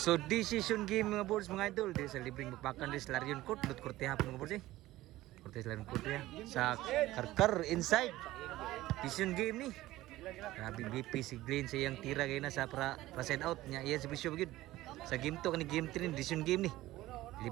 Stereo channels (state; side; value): quieter; left; 16.6 dB